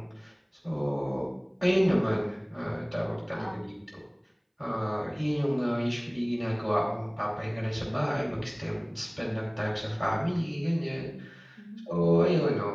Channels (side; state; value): both; identical; correlation 1.00